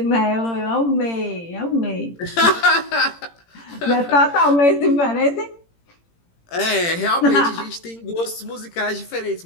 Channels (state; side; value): late; right; 18 ms